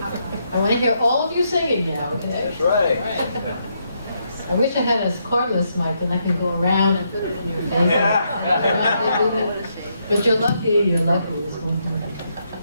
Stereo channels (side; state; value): both; inverted; correlation -0.78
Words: I want to hear all of you singing now, okay? That's right. I wish I had a cordless mic, then I can go around and put it in your face. Yeah. But you're lucky, you're lucky. This one.